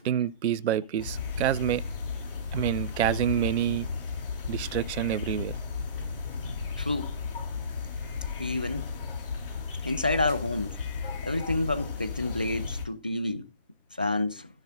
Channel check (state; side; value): inverted; both; correlation -0.45